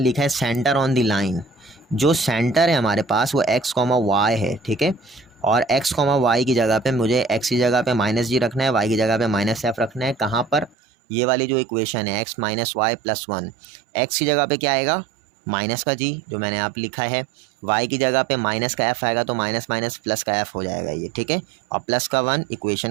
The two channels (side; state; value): left; drops out; at 10.8 s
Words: है सेंटर ऑन द लाइन। जो सेंटर है हमारे पास वो x, y है, ठीक है। और x, y की जगह पे मुझे x की जगह पे -g रखना है, y की जगह पे -f रखना है। कहाँ पर? ये वाली जो इक्वेशन है x - y + 1, x की जगह पे क्या आएगा? माइनस का g जो मैंने आप लिखा है, y की जगह पे माइनस का f आएगा तो माइनस माइनस प्लस का f हो जाएगा ये, ठीक है। और प्लस का 1